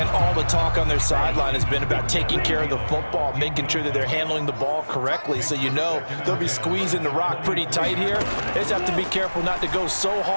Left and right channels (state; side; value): inverted; both; correlation -1.00